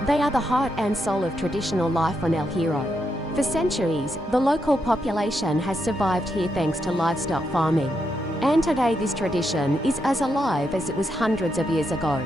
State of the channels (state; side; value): normal; both; correlation 0.82